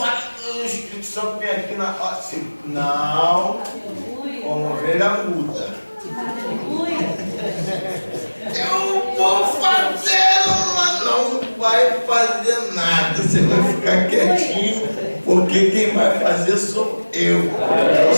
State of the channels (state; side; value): inverted; both; correlation -1.00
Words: O Espírito Santo vem aqui na... Assim, não, como ovelha muda. Eu vou fazer, mas não vai fazer nada. Você vai ficar quietinho, porque quem vai fazer sou eu.